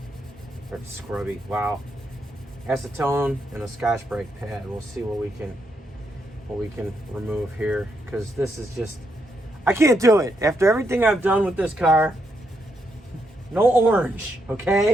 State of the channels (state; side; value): normal; both; correlation 0.79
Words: Or scrubby, wow. Acetone and a Scotch-Brite pad. We'll see what we can remove here, because this is just, I can't do it. After everything I've done with this car, no orange,